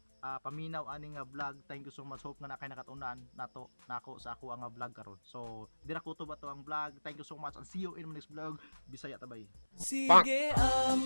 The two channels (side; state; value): both; inverted; correlation -1.00